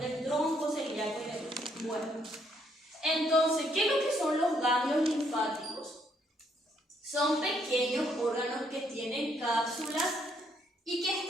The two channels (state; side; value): normal; both; correlation 0.71